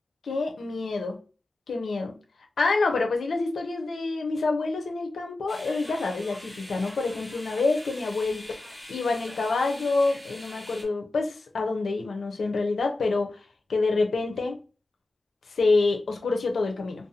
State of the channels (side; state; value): right; quieter; 3.0 dB